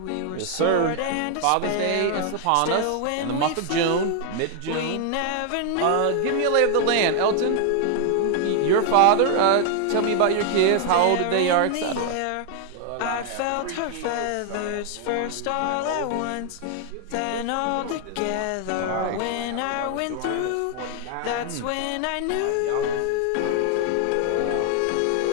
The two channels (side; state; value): both; different; correlation 0.00